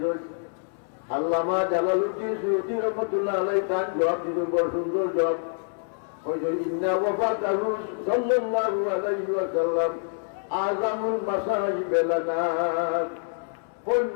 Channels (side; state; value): right; silent; 61 dB below the other